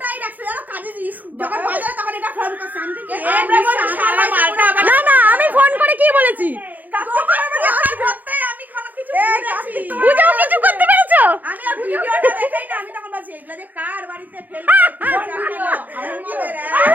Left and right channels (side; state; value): left; late; 0.083 ms